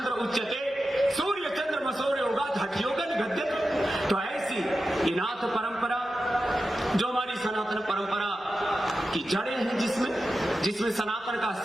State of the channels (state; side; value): normal; both; correlation 0.92